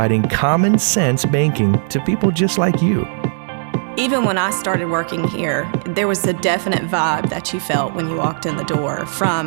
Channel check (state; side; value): silent; left; 58 dB below the other